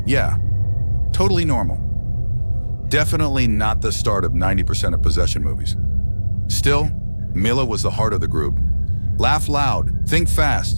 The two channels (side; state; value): both; inverted; correlation -1.00